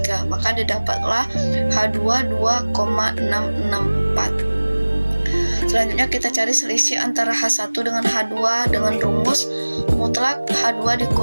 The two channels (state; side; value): inverted; both; correlation -1.00